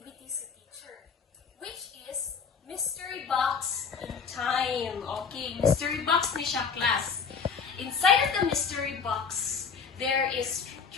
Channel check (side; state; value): right; quieter; 5.9 dB